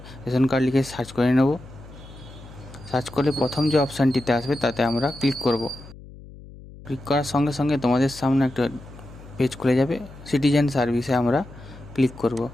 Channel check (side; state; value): left; noise; hum, 18 dB below the sound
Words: রেশন কার্ড লিখে সার্চ করে নেব। সার্চ করলে প্রথম যে অপশানটিতে আসবে তাতে আমরা ক্লিক করব। ক্লিক করার সঙ্গে সঙ্গে তোমাদের সামনে একটা পেজ খুলে যাবে। সিটিজেন সার্ভিসে আমরা ক্লিক করব।